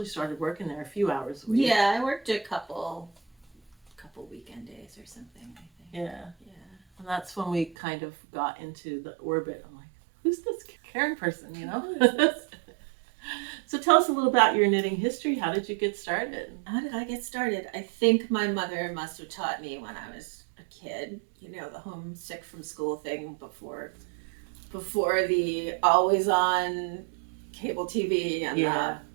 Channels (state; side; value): drops out; left; at 7.8 s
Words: started working there a few hours a week. Yeah, I worked a couple weekend days or something, I think. Yeah. And that's when we kind of got into the orbit. I'm like, who's this Karen person, you know? So tell us a little about your knitting history. How did you get started? How did I get started? I think my mother must have taught me when I was a kid, you know, the homesick from school thing before the always on cable TV and